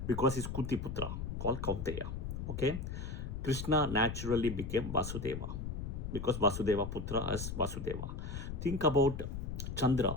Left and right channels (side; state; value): left; noise; rumble, 5 dB below the sound